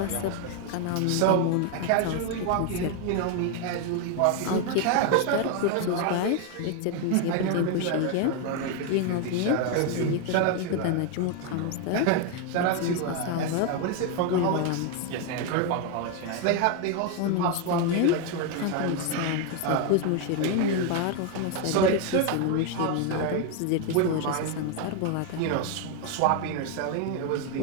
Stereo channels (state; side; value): different; both; correlation 0.01